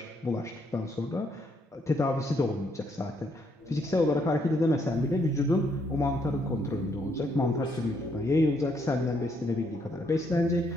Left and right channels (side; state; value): both; normal; correlation 0.72